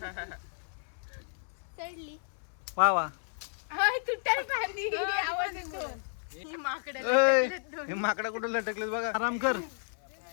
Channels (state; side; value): silent; right; digital silence